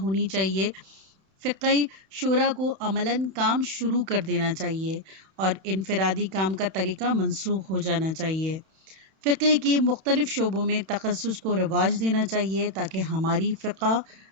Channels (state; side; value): late; left; 31 ms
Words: ہونی چاہیے، فقہی شورا کو عملاً کام شروع کر دینا چاہیے اور انفرادی کام کا طریقہ منسوخ ہو جانا چاہیے۔ فقہ کے مختلف شعبوں میں تخصص کو رواج دینا چاہیے تاکہ ہماری فقہ